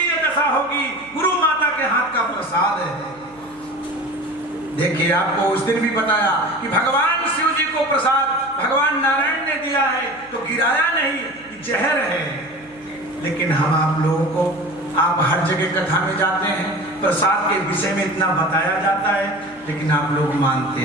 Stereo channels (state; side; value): noise; right; hum, 27 dB below the sound